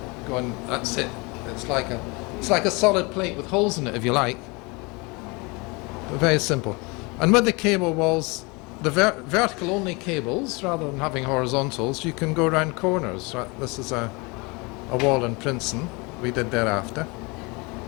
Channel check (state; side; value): quieter; right; 27.4 dB